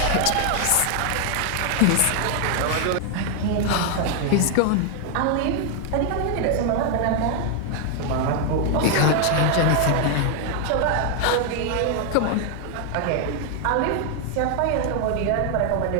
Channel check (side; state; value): both; different; correlation 0.00